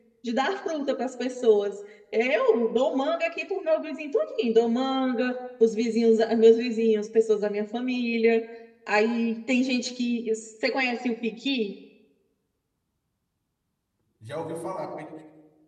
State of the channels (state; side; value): identical; both; correlation 1.00